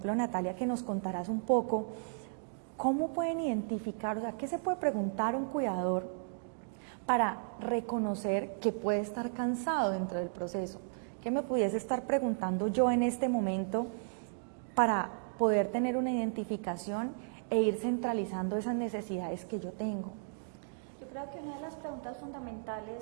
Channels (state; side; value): silent; left; digital silence